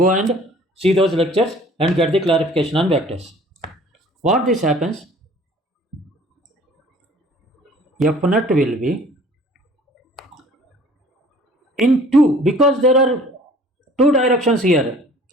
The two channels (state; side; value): normal; both; correlation 0.51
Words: and see those lectures and get the clarification on vectors. What this happens? F net will be in 2, because there are two directions here.